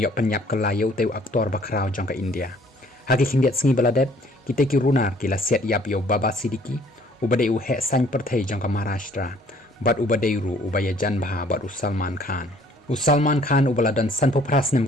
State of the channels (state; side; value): normal; both; correlation 0.58